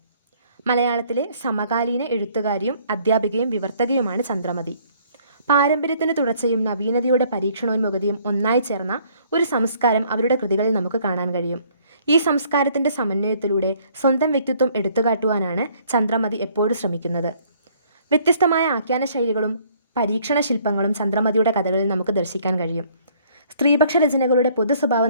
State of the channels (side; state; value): both; inverted; correlation -0.61